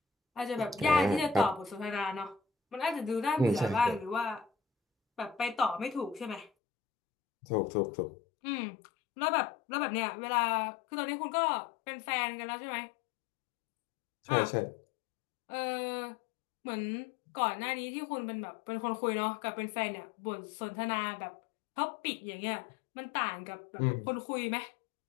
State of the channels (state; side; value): drops out; right; at 6.5 s